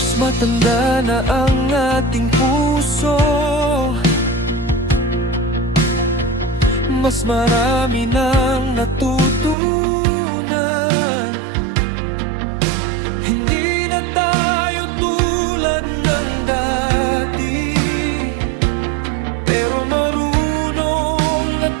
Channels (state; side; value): drops out; left; at 9.6 s